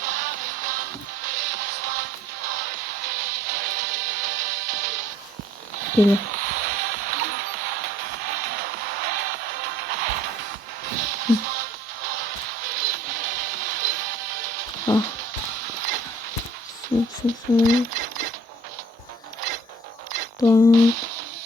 Böyle. Ah. Sen. Tamam.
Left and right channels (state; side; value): normal; both; correlation 0.56